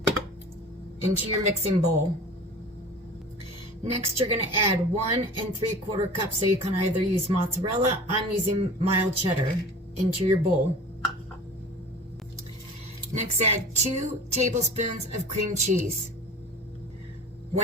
into your mixing bowl. Next you're going to add 1 3/4 cups, so you can either use mozzarella, I'm using mild cheddar, into your bowl. Next add 2 tablespoons of cream cheese.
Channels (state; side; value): normal; both; correlation 0.39